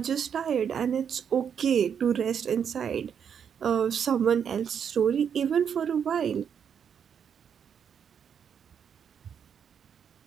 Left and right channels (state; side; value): quieter; left; 7.7 dB